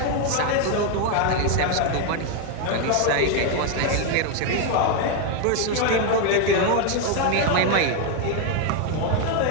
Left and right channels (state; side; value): different; both; correlation 0.01